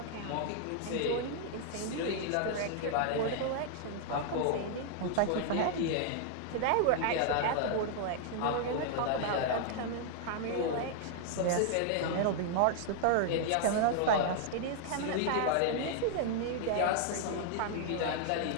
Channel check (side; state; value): both; different; correlation 0.00